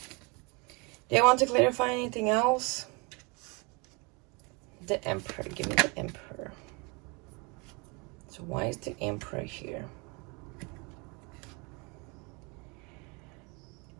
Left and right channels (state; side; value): quieter; left; 29.1 dB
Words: Do you want to clarify anything else? The Emperor. Give me the Emperor. So why is the Emperor here?